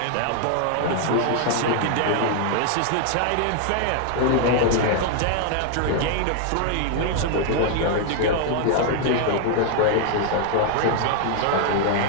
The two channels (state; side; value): different; both; correlation 0.00